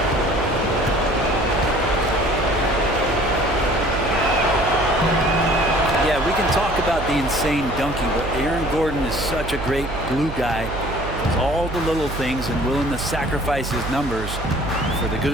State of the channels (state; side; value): noise; right; hum, 8 dB below the sound